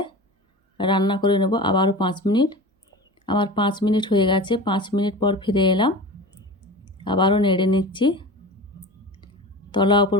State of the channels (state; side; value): normal; both; correlation 0.32